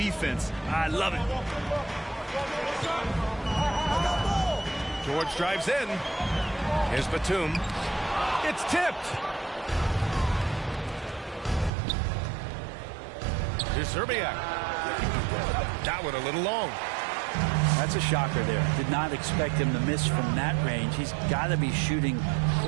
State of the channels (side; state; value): left; drops out; at 11.7 s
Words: I love it. George drives in. Here's Batum. It's tipped. Here's Zerbiak. That one a little long. That's a shocker there. Did not expect him to miss from that range. He's got to be shooting